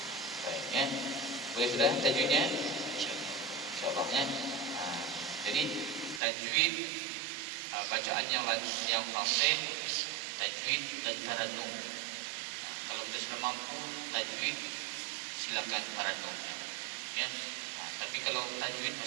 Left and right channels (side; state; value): left; drops out; at 6.2 s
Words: Baik ya. Boleh sudah tajwidnya? Insyaallah ya. Jadi tajwid bacaannya yang fasih, tajwid dan tarannum. Kalau kita sudah mampu tajwid, silakan tarannum ya. Tapi kalau tajwid